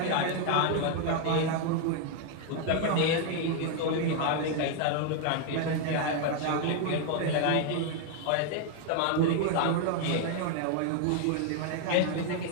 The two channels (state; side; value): different; both; correlation 0.00